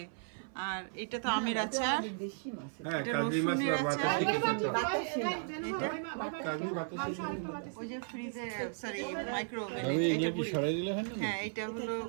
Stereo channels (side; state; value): left; silent; 54 dB below the other